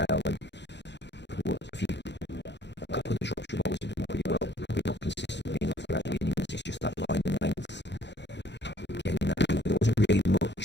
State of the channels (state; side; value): late; right; 0.51 ms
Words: and a couple of the Shropshire bowlers have done pretty well, probably not consistently enough throughout the innings. It's just that line and length. Getting that over, there wasn't really